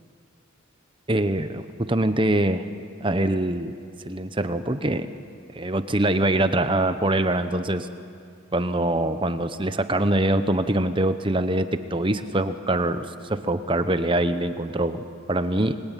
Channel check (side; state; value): both; normal; correlation 0.58